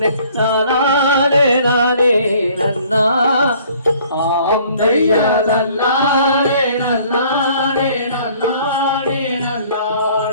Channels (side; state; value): both; inverted; correlation -0.56